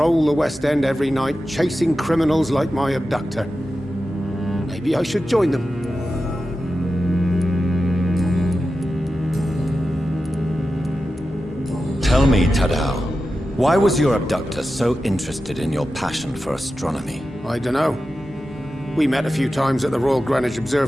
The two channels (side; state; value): both; normal; correlation 0.92